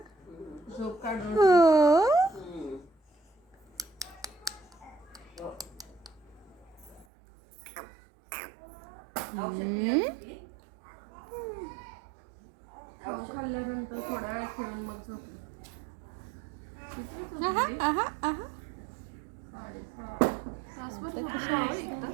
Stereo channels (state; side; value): drops out; left; at 7.1 s